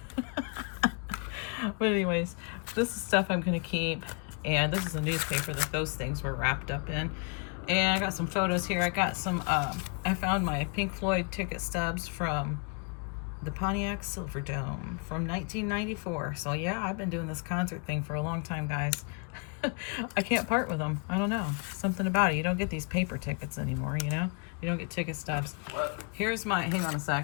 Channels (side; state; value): right; quieter; 36.8 dB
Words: But anyways, this is stuff I'm gonna keep, and this is a newspaper that those things were wrapped up in. And I got some photos here. I got some, I found my Pink Floyd ticket stubs from the Pontiac Silverdome from 1994. So yeah, I've been doing this concert thing for a long time, guys. I can't part with them. I don't know. Something about it. You don't get these paper tickets anymore, you know? You don't get ticket stubs. Here's my, hang on a